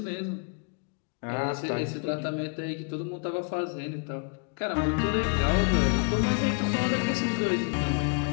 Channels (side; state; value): right; quieter; 35.8 dB